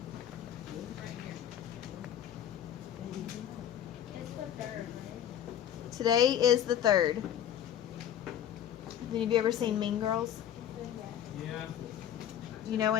Today is the 3rd. Have any of you ever seen Mean Girls? Yeah. You know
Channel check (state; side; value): quieter; right; 10.2 dB